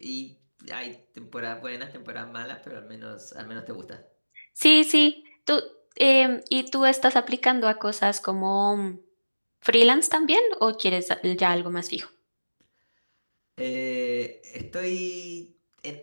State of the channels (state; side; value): inverted; both; correlation -1.00